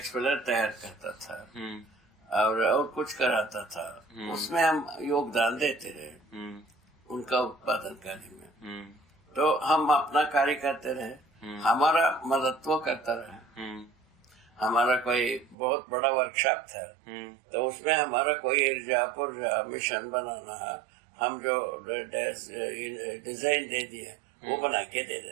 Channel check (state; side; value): drops out; left; at 15.6 s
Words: तैयार करता था और कुछ कराता था। उसमें हम योगदान देते रहे उनका उत्पादन कार्य में। तो हम अपना कार्य करते रहे, हमारा मदद वो करता रहे। हमारा कोई बहुत बड़ा वर्कशॉप था तो उसमें हमारा कोई ऊर्जा मिशन बनाना है, हम जो डिजाइन दे दिए वो बना के दे